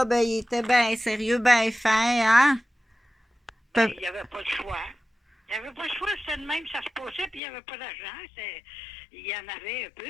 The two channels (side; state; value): right; drops out; at 7.4 s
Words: ben, il était bien sérieux, bien fin, hein? Ben, Pe- il n'y avait pas de choix. Il n'y avait pas de choix, c'était de même, ça se passait, puis il n'y avait pas d'argent. Il y en avait un peu,